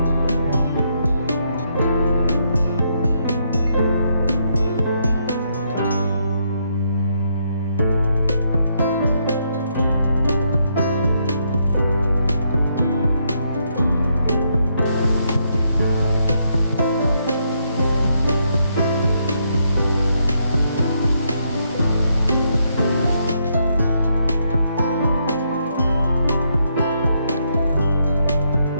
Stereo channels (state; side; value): inverted; both; correlation -0.76